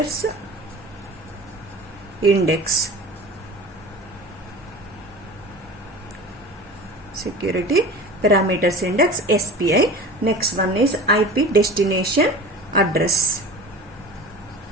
index. Security parameters index, SPI. Next one is IP destination address.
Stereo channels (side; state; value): both; normal; correlation 0.37